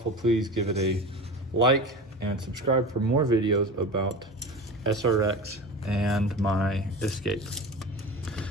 please give it a like and subscribe for more videos about SRX and my Escape.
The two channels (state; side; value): normal; both; correlation 0.31